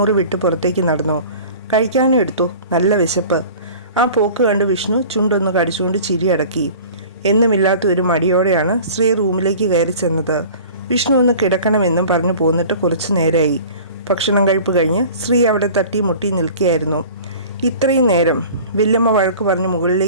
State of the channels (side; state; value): both; inverted; correlation -0.42